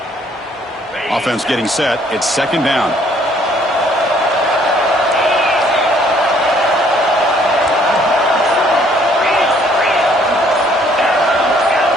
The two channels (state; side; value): normal; both; correlation 0.63